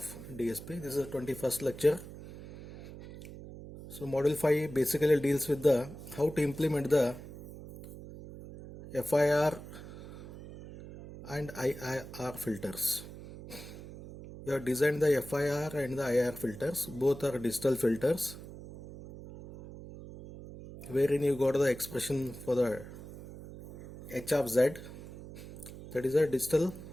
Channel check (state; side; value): noise; right; hum, 14 dB below the sound